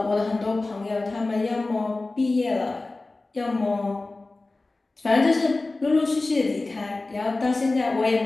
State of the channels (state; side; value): quieter; right; 3.2 dB